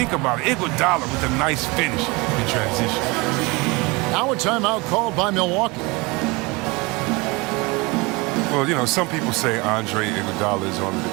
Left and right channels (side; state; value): left; quieter; 25.5 dB